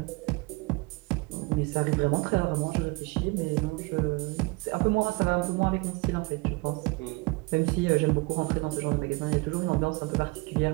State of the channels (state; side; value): quieter; left; 26.1 dB